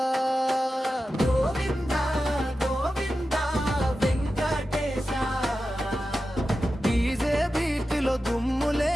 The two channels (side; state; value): both; normal; correlation 0.92